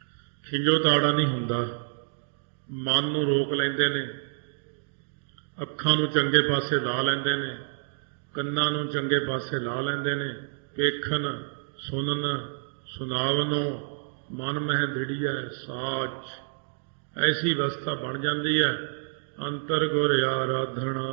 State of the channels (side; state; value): left; silent; digital silence